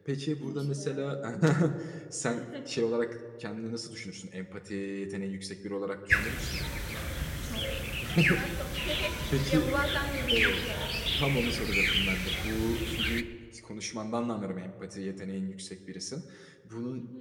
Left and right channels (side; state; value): both; identical; correlation 1.00